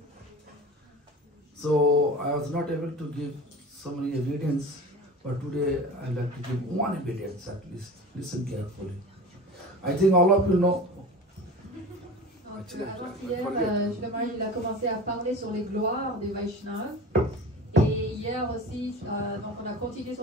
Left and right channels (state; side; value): normal; both; correlation 0.35